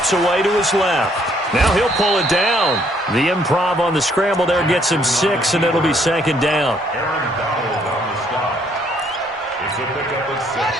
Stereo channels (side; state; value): both; normal; correlation 0.67